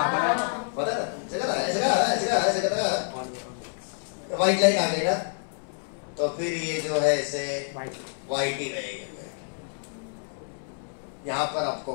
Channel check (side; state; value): right; silent; 60 dB below the other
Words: पता है व्हाइट लाइट आ गई ना तो फिर ये जो है ऐसे व्हाइट ही रहेगा, यहाँ पर आपको